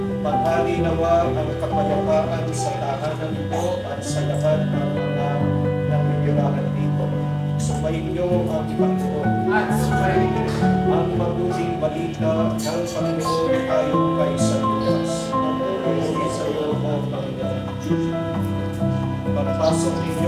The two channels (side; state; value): both; identical; correlation 1.00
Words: Maghari nawa ang kapayapaan sa tahanan ito at sa lahat ng mga nangyayarahan dito. Sumayin niyo ang Panginoon. At sumayin niyo Ang mabuting balita ng Panginoon tayo kay San Lucas. Pagpapuri sa iyo, O Panginoon. Pagpasok